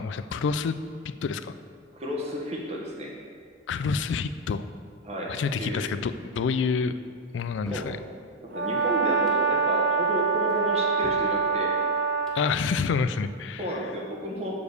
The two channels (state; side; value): normal; both; correlation 0.05